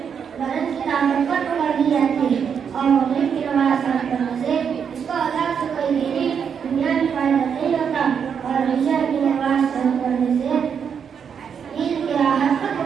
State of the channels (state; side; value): quieter; left; 7.2 dB